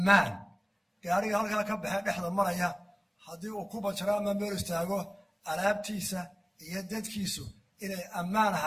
gaariga halkaa ka baxee dhexda maraya haddii uu ku banjaro ama meel istaago alaabtiisa iyo dadkiisu inay ammaan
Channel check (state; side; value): identical; both; correlation 1.00